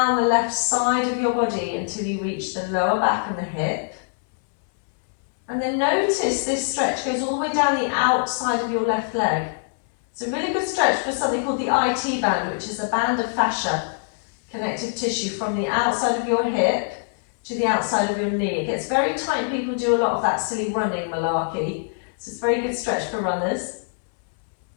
the left side of your body until you reach the lower back and the hip. And then notice this stretch goes all the way down the outside of your left leg. It's a really good stretch for something called the IT band, which is a band of fascia, connective tissue from the outside of your hip to the outside of your knee. It gets very tight. People do a lot of that silly running malarkey. So it's a very good stretch for runners.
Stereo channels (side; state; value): right; silent; 63 dB below the other